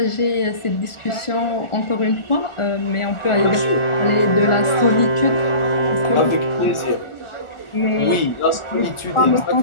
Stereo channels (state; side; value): late; right; 1.4 ms